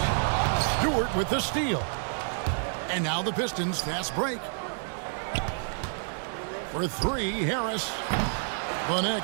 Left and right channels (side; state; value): left; silent; digital silence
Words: Stewart with the steal. And now the Pistons fast break. For three, Harris. The